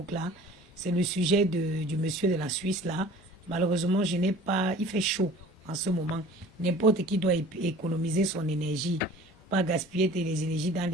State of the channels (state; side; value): normal; both; correlation 0.46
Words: là. C'est le sujet du monsieur de la Suisse là. Malheureusement, je n'ai pas... Il fait chaud en ce moment. N'importe qui doit économiser son énergie. Pas gaspiller les énergies dans